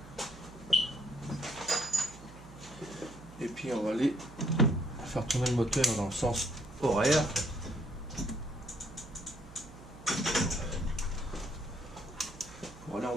Et puis on va aller faire tourner le moteur dans le sens horaire. Pour aller en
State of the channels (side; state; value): right; noise; hum, 18 dB below the sound